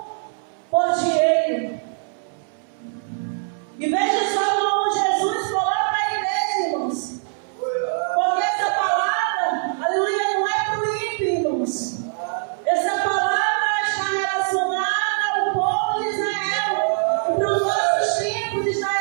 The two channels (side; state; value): left; silent; digital silence